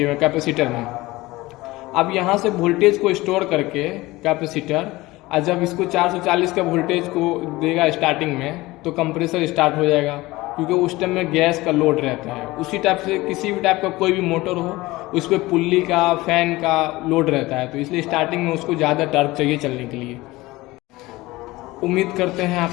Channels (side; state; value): right; quieter; 19.9 dB